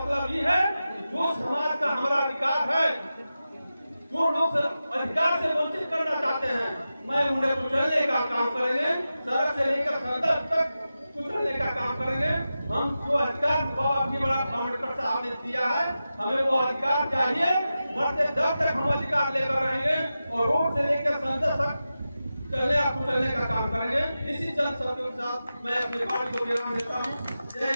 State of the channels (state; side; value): inverted; both; correlation -0.92